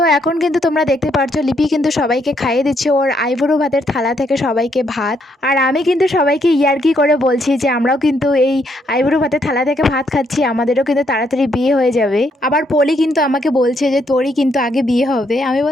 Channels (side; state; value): both; normal; correlation 0.73